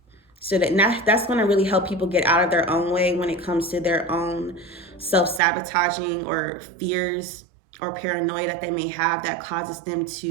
So that's going to really help people get out of their own way when it comes to their own self-sabotaging or fears or paranoia that they may have that causes them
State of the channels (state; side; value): drops out; left; at 5.4 s